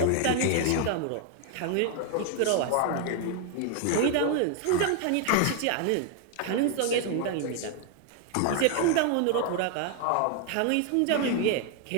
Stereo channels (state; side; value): different; both; correlation 0.00